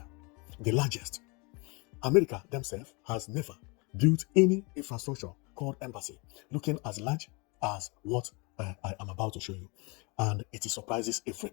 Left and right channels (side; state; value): right; quieter; 29.6 dB